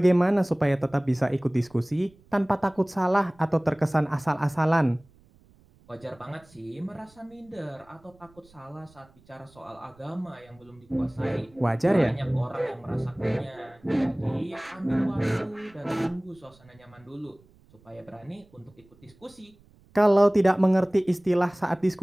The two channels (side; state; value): right; noise; rumble, 29 dB below the sound